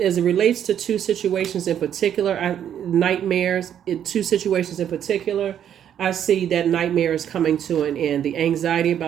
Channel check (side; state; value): left; quieter; 9.6 dB